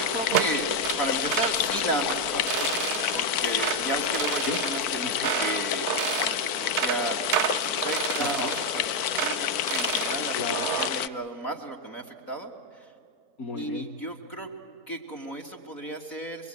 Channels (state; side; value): late; right; 4.5 ms